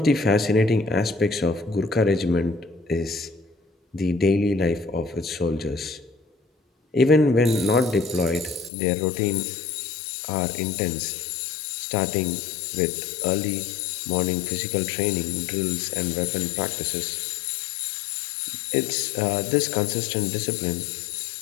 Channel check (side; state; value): right; drops out; at 8.7 s